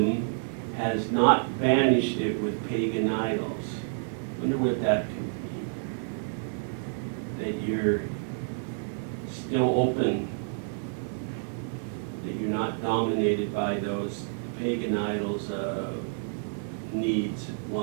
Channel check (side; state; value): left; silent; digital silence